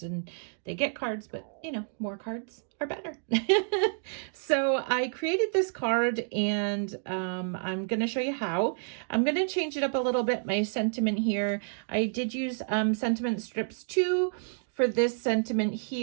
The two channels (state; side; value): silent; left; digital silence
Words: and they get cards, but you know, more cards are better. So I created this card and I'm going to show you how. I'm going to change it up a little bit, my sentiment here. I did use sentiment strips too for this sentiment